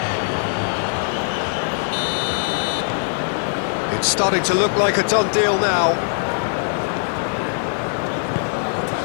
It's starting to look like a done deal now.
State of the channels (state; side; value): silent; right; 65 dB below the other